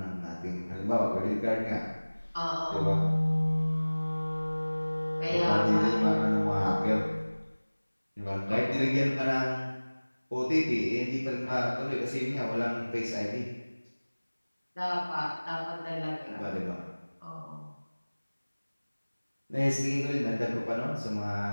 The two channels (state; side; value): inverted; both; correlation -1.00